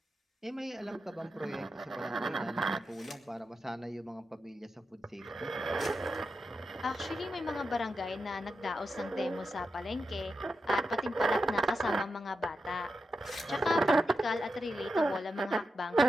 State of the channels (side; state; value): both; normal; correlation 0.88